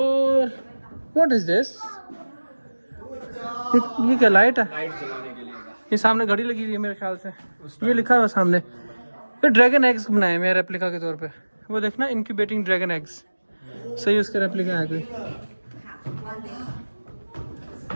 व्हाट इज दिस? ये क्या लाइट है? ये सामने घड़ी लगी हुई है मेरे ख्याल से, ये लिखा हुआ सामने। ये ड्रैगन एग्स बनाए मेरे रेप्लिका के तौर पे, वो देखना इनक्यूबेटिंग ड्रैगन एग्स। सही उसका रेप्लिका है कोई।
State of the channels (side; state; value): both; inverted; correlation -1.00